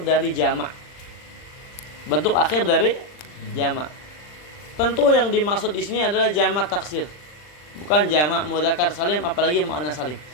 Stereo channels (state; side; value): late; right; 40 ms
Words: dari jamak. Bentuk akhir dari jamak. Tentu yang dimaksud di sini adalah jamak taksir, bukan jamak mudzakkar salim, apalagi muannas salim.